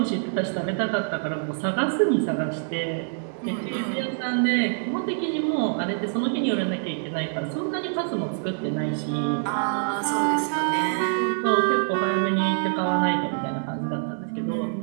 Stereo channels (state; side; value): silent; left; 61 dB below the other